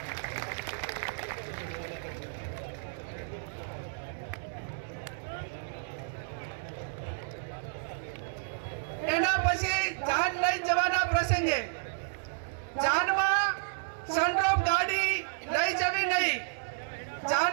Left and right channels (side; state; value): left; silent; digital silence